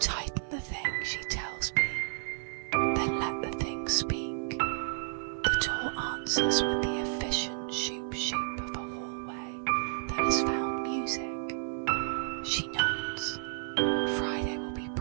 the thing, she tells me, then let the thing speak. The door answers with the efficient shoop-shoop of a hallway that has found music. She nods. Friday will be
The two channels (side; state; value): left; silent; 57 dB below the other